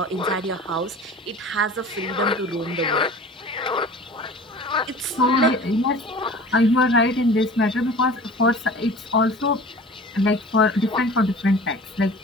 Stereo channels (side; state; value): both; normal; correlation 0.42